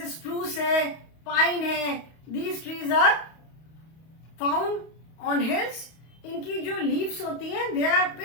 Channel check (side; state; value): right; late; 31 ms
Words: स्प्रूस है, पाइन है, these trees are found on hills इनकी जो लीव्स होती हैं they are